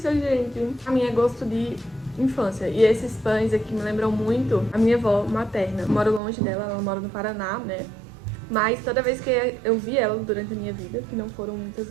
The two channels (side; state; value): left; drops out; at 6.2 s